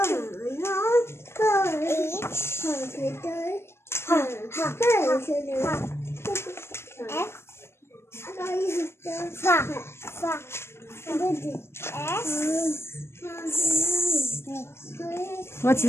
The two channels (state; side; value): late; right; 0.12 ms